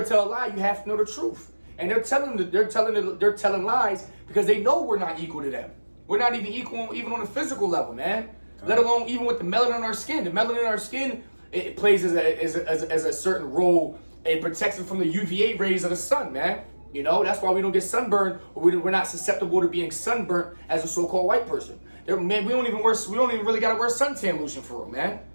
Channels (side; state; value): both; inverted; correlation -1.00